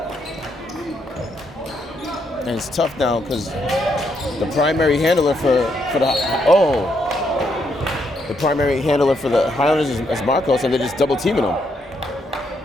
And it's tough now because the primary handler for the Highlanders is Marcos, and they're just double teaming him.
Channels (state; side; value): normal; both; correlation 0.76